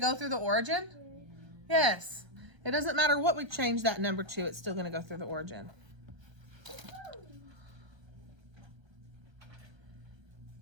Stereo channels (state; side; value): late; left; 1.3 ms